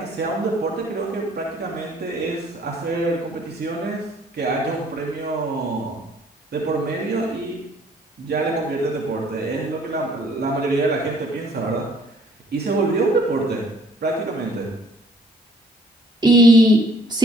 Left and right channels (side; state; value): both; normal; correlation 0.59